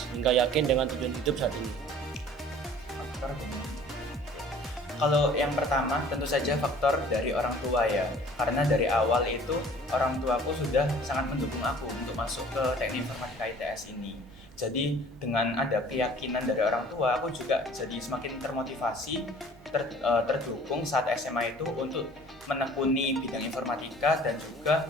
hingga yakin dengan tujuan hidup saat ini? Kalau yang pertama tentu saja faktor dari orang tua ya, karena dari awal itu orang tuaku sudah sangat mendukung aku untuk masuk ke teknik informatika ITS ini. Jadi dengan ada keyakinan dari orang tua, aku juga jadi semakin termotivasi, terdukung saat SMA itu untuk menekuni bidang informatika dan juga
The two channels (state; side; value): normal; both; correlation 0.49